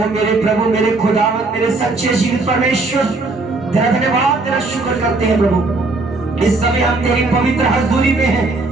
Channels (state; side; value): quieter; left; 3.3 dB